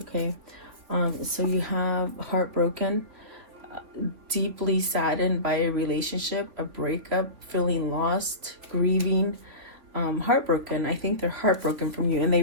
so you have heartbroken, deeply saddened by a relationship, a breakup, feeling lost, grieving, heartbroken. I think they're heartbroken from you, and they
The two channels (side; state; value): left; late; 3.5 ms